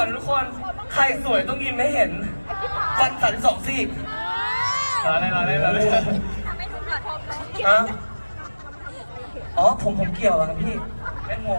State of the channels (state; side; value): inverted; both; correlation -1.00